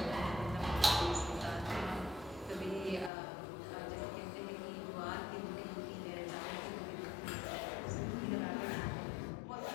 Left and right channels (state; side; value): drops out; right; at 3.1 s